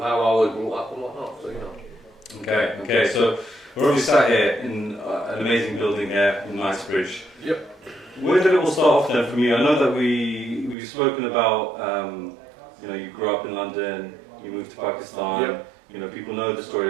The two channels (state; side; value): drops out; left; at 10.8 s